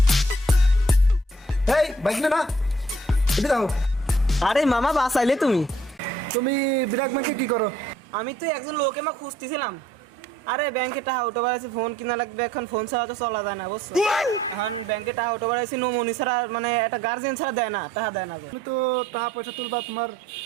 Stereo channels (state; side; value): normal; both; correlation 0.62